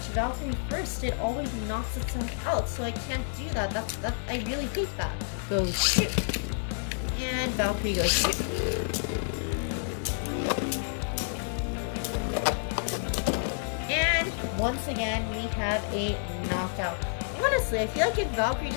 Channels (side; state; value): right; silent; digital silence